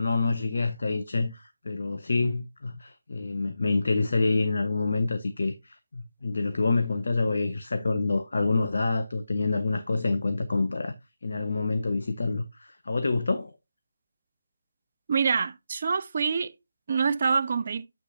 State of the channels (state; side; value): inverted; both; correlation -0.89